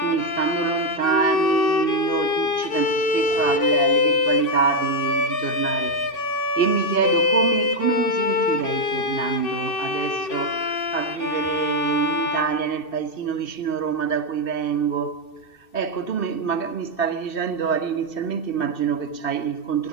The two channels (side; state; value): right; late; 2.7 ms